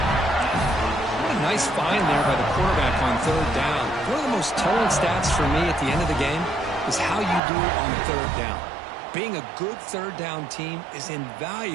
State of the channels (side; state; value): left; drops out; at 7.4 s